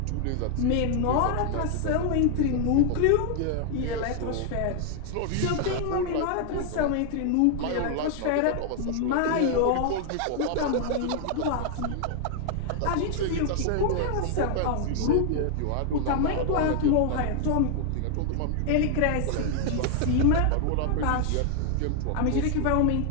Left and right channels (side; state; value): both; different; correlation 0.00